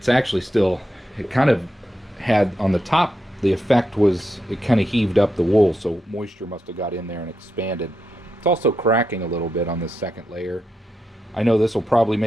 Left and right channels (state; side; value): normal; both; correlation 0.85